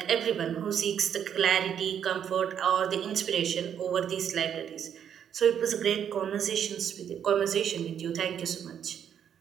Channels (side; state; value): left; quieter; 8.8 dB